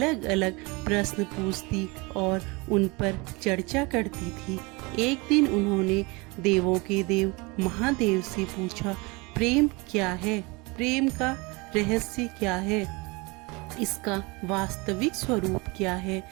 अलग प्रश्न पूछती और उन पर चर्चा करती थी। एक दिन उन्होंने देवों के देव महादेव से पूछा, प्रेम क्या है? प्रेम का रहस्य क्या है? इसका वास्तविक स्वरूप क्या है?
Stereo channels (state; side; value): quieter; left; 26.5 dB